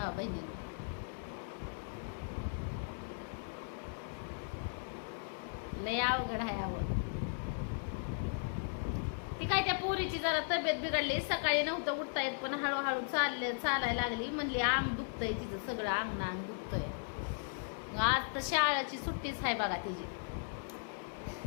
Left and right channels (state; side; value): silent; right; digital silence